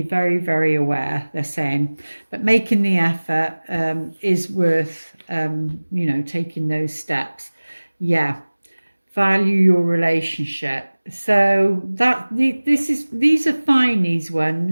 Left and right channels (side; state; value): both; inverted; correlation -1.00